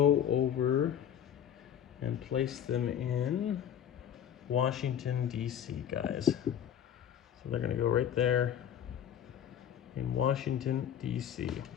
over and place them in Washington, D.C., guys. So they're going to go right there in Washington, D.C.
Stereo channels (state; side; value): quieter; right; 9.5 dB